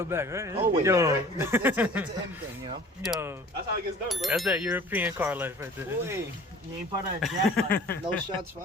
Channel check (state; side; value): normal; both; correlation 0.46